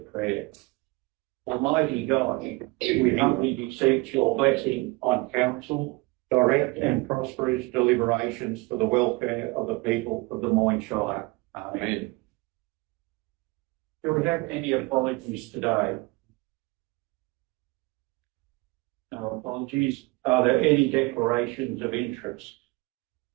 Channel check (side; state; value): left; quieter; 24.8 dB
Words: Almighty God, we humbly beseech your blessing on council, direct and prosperous deliberations for the welfare of the people of the Moyne Shire. Amen. Do we have any apologies today? No apologies. Are there any declarations of interest?